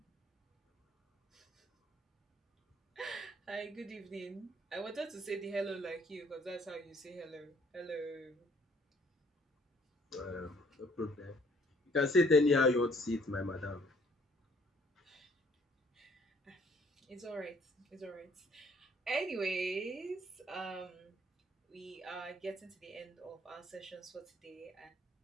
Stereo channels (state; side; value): normal; both; correlation 0.62